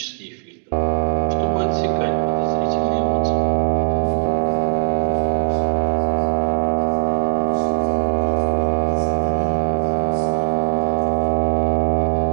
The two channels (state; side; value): silent; left; 66 dB below the other